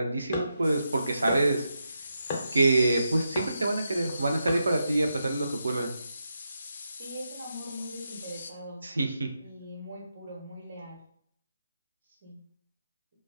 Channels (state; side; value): inverted; both; correlation -0.85